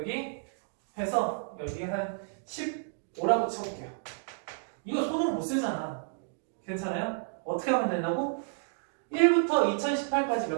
해서 여기 한 15라고 쳐볼게요. 이거 손으로 못 쓰잖아. 괜찮아요? 어떻게 하면 된다고? 1부터 2018까지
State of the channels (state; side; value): silent; left; digital silence